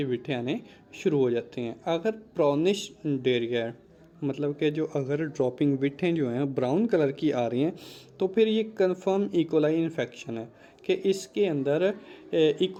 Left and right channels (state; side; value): identical; both; correlation 1.00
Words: विठें आने शुरू हो जाती हैं। अगर ब्राउनिश डेरिया, मतलब कि जो अगर ड्रॉपिंग विठें जो हैं ब्राउन कलर की आ रही हैं, तो फिर ये कंफर्म इकोलाई इन्फेक्शन है कि इसके अंदर